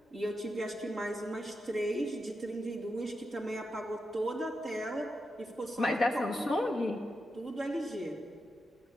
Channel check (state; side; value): normal; both; correlation 0.87